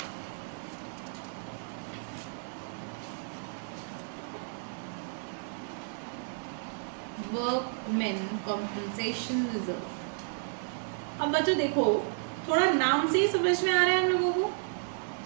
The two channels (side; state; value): left; silent; 56 dB below the other